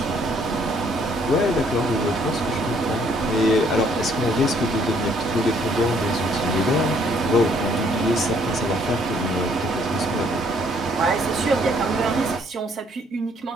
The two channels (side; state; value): both; normal; correlation 0.65